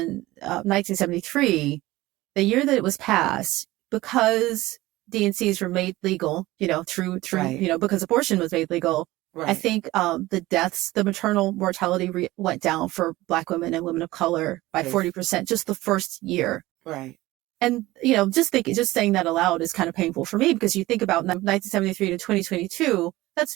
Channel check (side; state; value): left; quieter; 18.1 dB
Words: 1973, the year that it was passed, because DNCs were made legal, through Right. Because abortion was made legal. Right. I think the maternal mortality went down for Black women and women of color by 40% just the first year. Right. And, just saying that aloud is kind of painful for me, because you think about 1973 to 2022, that's